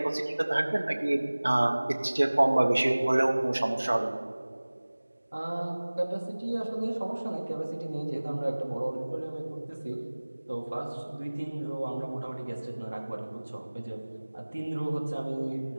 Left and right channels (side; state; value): both; inverted; correlation -1.00